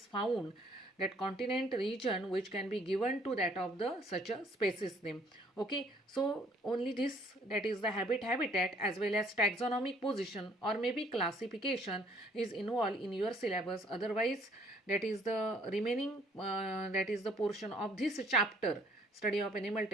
found, that continent region which can be given to that of the such a species name. Okay, so only this, that is the habitat as well as taxonomic position or maybe classification is involved in your syllabus. Otherwise, that is the remaining that is the portion of this chapter, study of animal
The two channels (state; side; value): normal; both; correlation 0.61